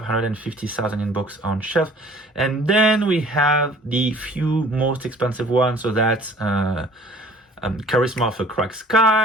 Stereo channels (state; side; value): normal; both; correlation 0.52